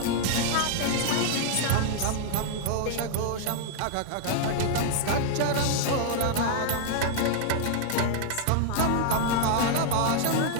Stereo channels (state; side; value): different; both; correlation -0.01